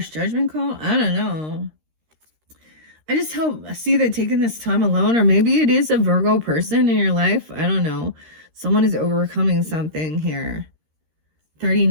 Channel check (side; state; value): left; late; 13 ms